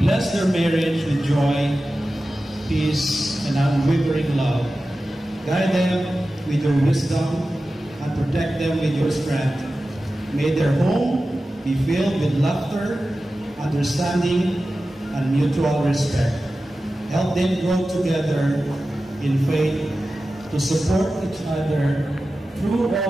their marriage with joy, peace, and unwavering love. Guide them with your wisdom and protect them with your strength. May their home be filled with laughter, understanding, and mutual respect. Help them grow together in faith to support each other through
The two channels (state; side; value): normal; both; correlation 0.94